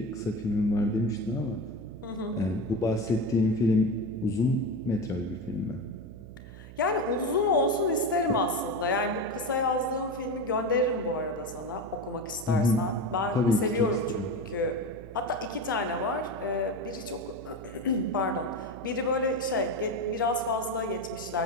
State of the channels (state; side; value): noise; right; hum, 15 dB below the sound